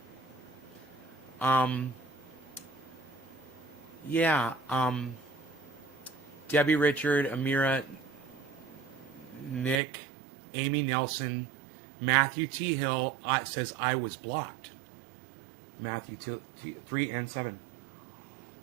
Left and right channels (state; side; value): drops out; left; at 9.8 s